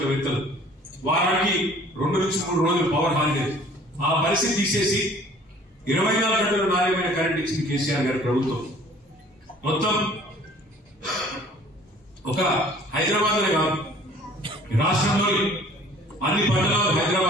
వారానికి 2 నుంచి 3 రోజులు పవర్ హాలిడే, ఆ పరిస్థితి తీసేసి 24 గంటలు నాణ్యమైన కరెంట్ ఇచ్చింది కేసీఆర్ గారి ప్రభుత్వం. మొత్తం ఒక హైదరాబాద్ లో కాదు, రాష్ట్రంలోని అన్ని పట్టణాలు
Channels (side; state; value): both; normal; correlation 0.52